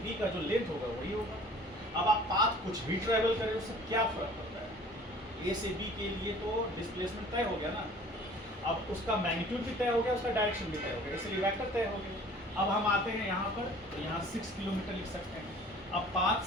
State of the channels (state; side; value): normal; both; correlation 0.49